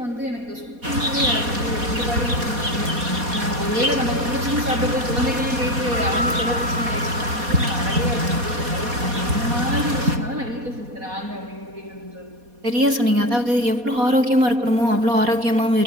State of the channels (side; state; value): left; late; 4.2 ms